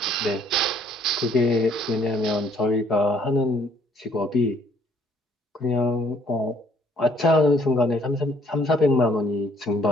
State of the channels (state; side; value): normal; both; correlation 0.63